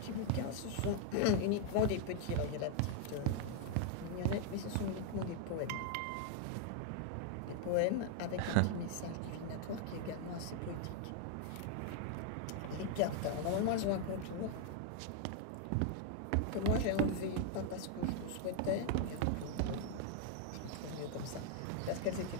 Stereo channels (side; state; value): both; different; correlation 0.00